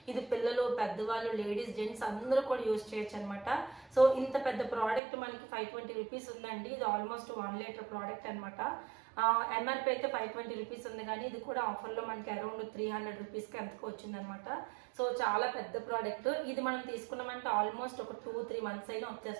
ఇది పిల్లలు, పెద్దవాళ్ళు, లేడీస్, జెంట్స్ అందరూ కూడా యూజ్ చేయొచ్చు అనమాట. సో ఇంత పెద్ద ప్రోడక్ట్ మనకి 520 రూపీస్ ఉందండి. ఇది ఆల్మోస్ట్ 1 లీటర్ ప్రోడక్ట్ అనమాట. ఎంఆర్పీ అయితే 520 రూపీస్ ఉంది, కానీ ఇది కూడా ఆఫర్లో మనకి అరౌండ్ 300 రూపీస్కి ఎంతకు వచ్చింది అనమాట. సో చాలా పెద్ద ప్రోడక్ట్. ఇది మనం తీసుకున్నామంటే ఆల్మోస్ట్ ఒక 2-3 మంత్స్ అయినా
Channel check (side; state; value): left; drops out; at 5.0 s